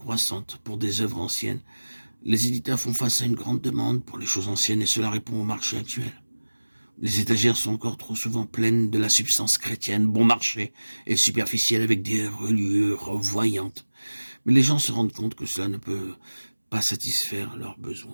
pour des œuvres anciennes. Les éditeurs font face à une grande demande pour les choses anciennes et cela répond au marché actuel. Les étagères sont encore trop souvent pleines de la substance chrétienne, bon marché et superficielle avec des reliures voyantes. Mais les gens se rendent compte que cela ne peut pas satisfaire leurs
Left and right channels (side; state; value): both; inverted; correlation -1.00